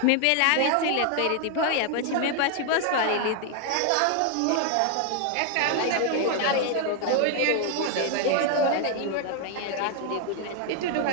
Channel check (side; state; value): both; different; correlation 0.00